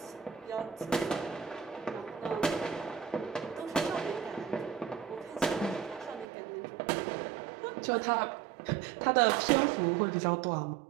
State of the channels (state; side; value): drops out; left; at 6.2 s